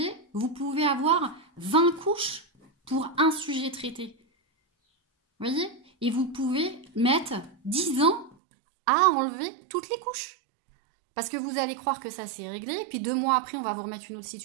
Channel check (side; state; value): left; drops out; at 8.3 s